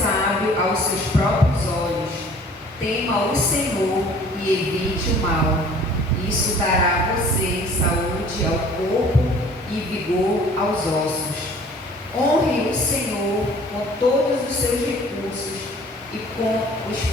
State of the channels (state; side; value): normal; both; correlation 0.51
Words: aos seus próprios olhos. Tema o Senhor e evite o mal. Isso dará a você saúde ao corpo e vigor aos ossos. Honre o Senhor com todos os seus recursos e com os